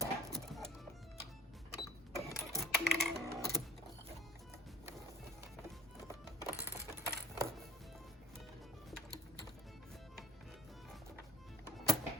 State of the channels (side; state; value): both; normal; correlation 0.49